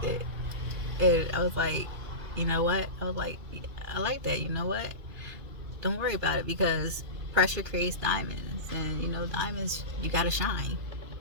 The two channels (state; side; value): late; left; 2.4 ms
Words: it. And I was like, you know what? I was like, I like that. You know what? Don't worry about it, because pressure creates diamonds. And, you know, diamonds, you got to shine.